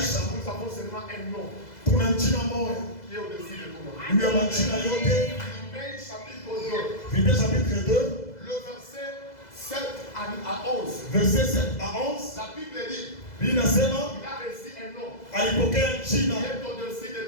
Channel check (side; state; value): right; late; 2.0 ms